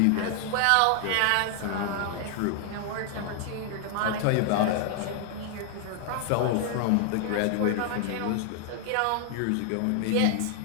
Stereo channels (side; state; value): both; different; correlation 0.00